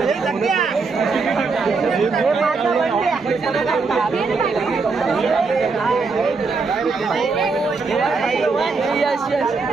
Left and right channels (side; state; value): left; quieter; 4.4 dB